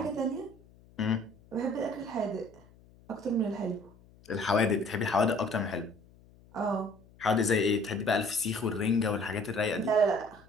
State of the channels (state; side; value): noise; left; hum, 26 dB below the sound